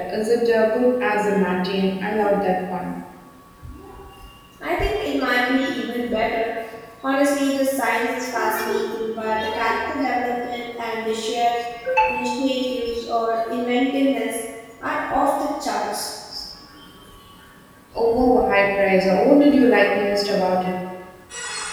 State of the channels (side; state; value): both; identical; correlation 1.00